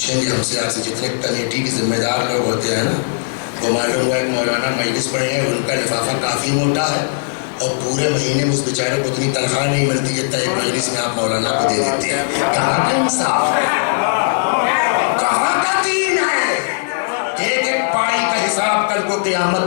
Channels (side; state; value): right; silent; 58 dB below the other